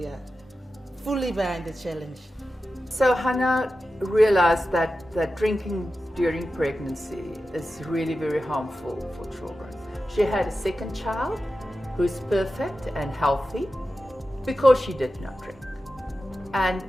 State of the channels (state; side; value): normal; both; correlation 0.92